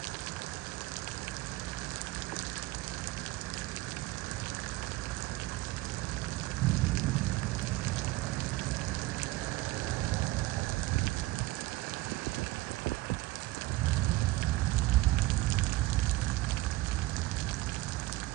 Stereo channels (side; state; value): left; quieter; 18.8 dB